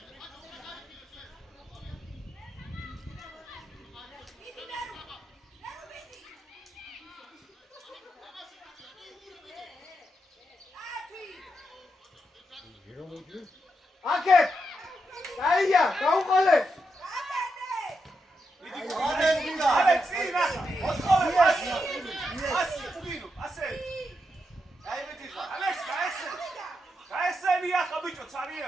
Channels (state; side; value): normal; both; correlation 0.84